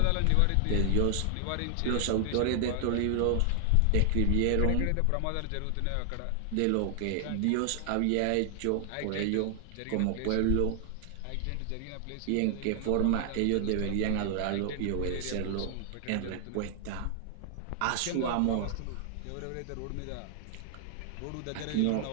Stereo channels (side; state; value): both; different; correlation 0.00